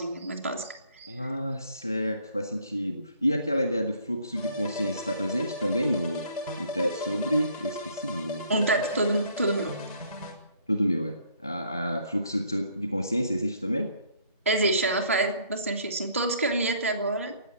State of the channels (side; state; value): both; inverted; correlation -0.62